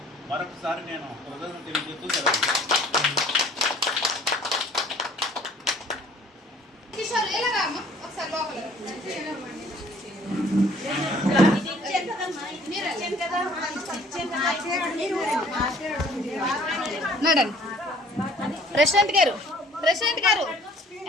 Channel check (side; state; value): both; normal; correlation 0.55